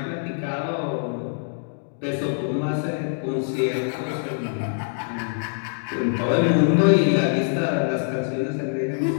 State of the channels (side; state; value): right; silent; digital silence